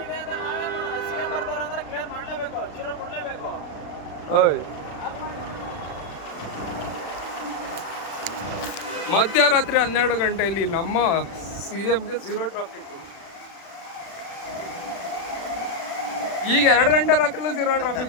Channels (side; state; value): right; late; 36 ms